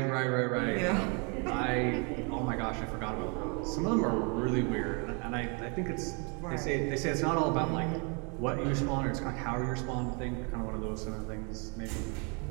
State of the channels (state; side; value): quieter; left; 34.2 dB